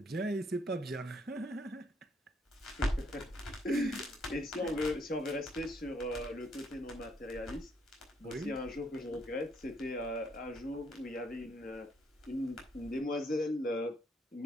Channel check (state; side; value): normal; both; correlation 0.70